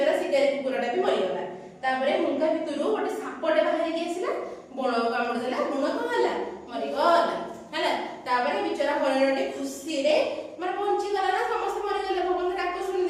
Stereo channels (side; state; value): both; identical; correlation 1.00